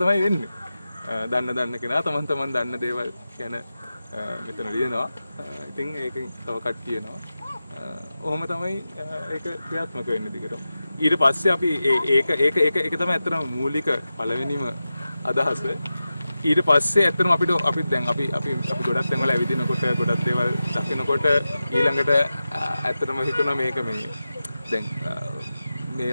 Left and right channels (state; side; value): inverted; both; correlation -0.93